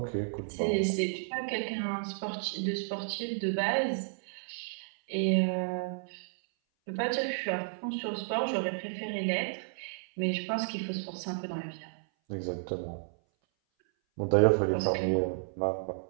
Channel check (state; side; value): silent; left; 56 dB below the other